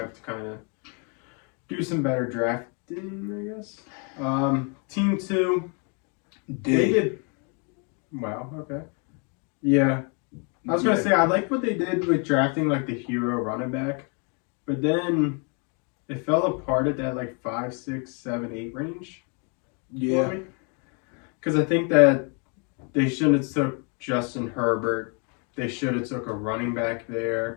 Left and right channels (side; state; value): right; quieter; 36.6 dB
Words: to kind of do some better drafting, I guess. Team 2, they did. Wow, okay. Yeah. I was going to say, I like what they did with drafting, like, the hero running back. But then it fell apart at that, 5, 6, 7, 8 range. Yeah. Because I think that they shouldn't have took Justin Herbert. They should have took a running back